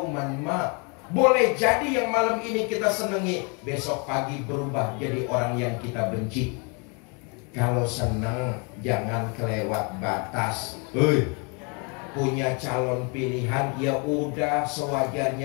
ma. Boleh jadi yang malam ini kita senengi, besok pagi berubah jadi orang yang kita benci. Kalau seneng, jangan kelewat batas. Punya calon pilihan, ya udah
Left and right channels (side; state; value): right; quieter; 34.4 dB